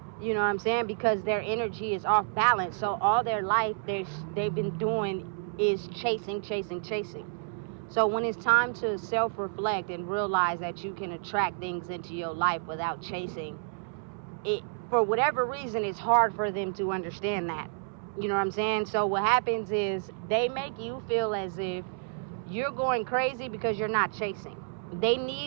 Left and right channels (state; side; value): silent; left; 56 dB below the other